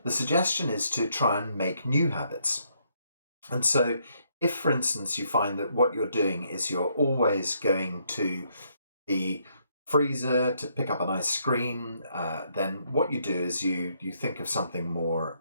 The suggestion is to try and make new habits. And so if, for instance, you find that what you're doing is you're always going to the freezer to pick up an ice cream, then what you do is you think of something more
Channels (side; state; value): both; inverted; correlation -0.73